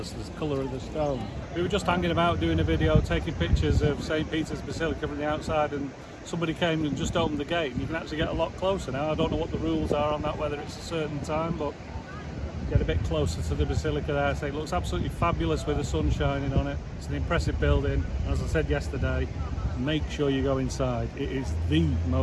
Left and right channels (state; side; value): identical; both; correlation 1.00